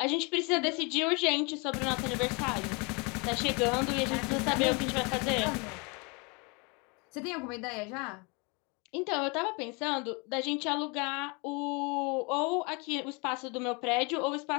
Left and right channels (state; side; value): quieter; right; 30.5 dB